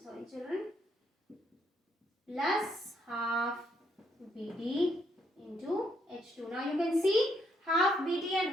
sorry children, plus half BD into H2. Now you can see half BD and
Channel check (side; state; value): both; normal; correlation 0.74